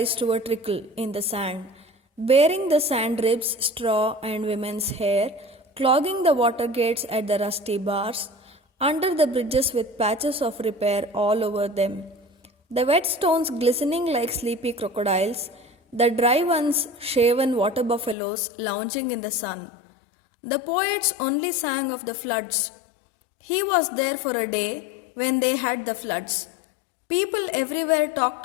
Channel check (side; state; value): right; drops out; at 18.2 s